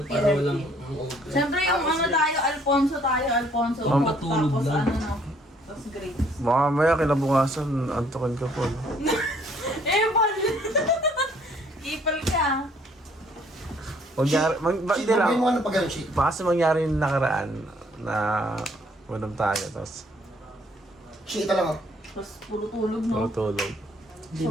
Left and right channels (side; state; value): both; normal; correlation 0.63